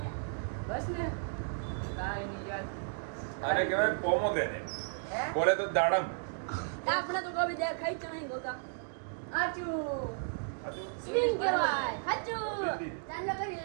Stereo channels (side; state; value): left; silent; digital silence